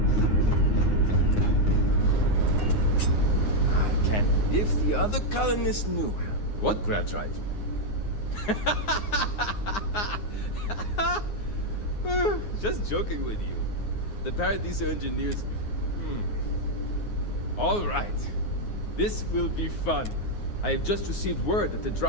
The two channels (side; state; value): right; late; 9.6 ms